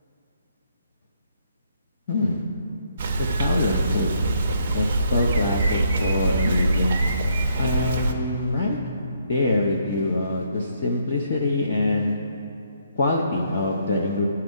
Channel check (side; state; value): both; inverted; correlation -0.70